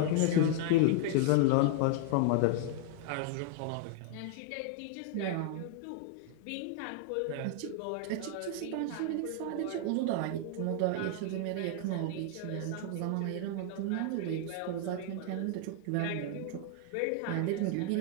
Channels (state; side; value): different; both; correlation 0.00